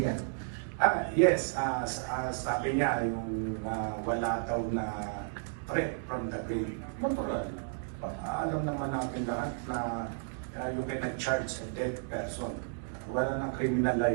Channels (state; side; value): silent; left; digital silence